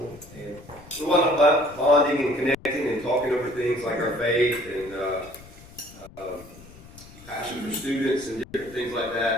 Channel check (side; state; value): left; noise; rumble, 20 dB below the sound